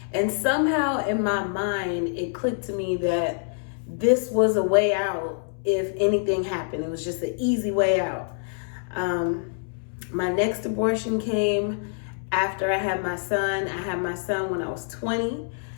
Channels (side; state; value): right; silent; 61 dB below the other